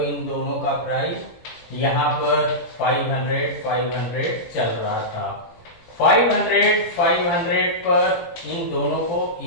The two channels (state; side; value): late; right; 17 ms